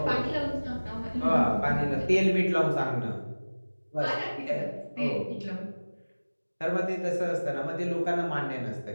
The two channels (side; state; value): both; inverted; correlation -1.00